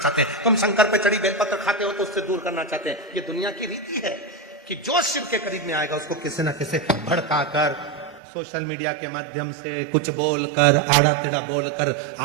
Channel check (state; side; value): drops out; left; at 8.2 s